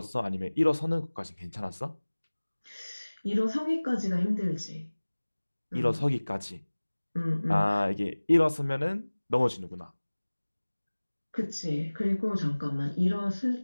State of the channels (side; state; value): both; inverted; correlation -1.00